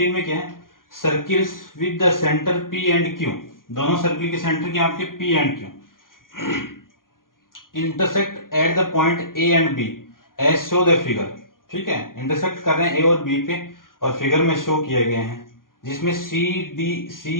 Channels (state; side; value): late; right; 0.91 ms